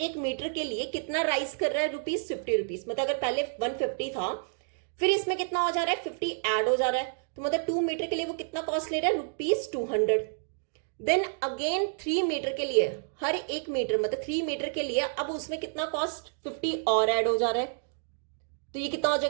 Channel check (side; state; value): left; silent; digital silence